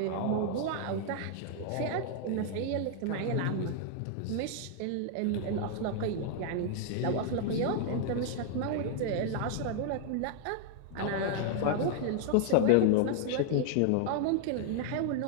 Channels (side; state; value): both; different; correlation 0.00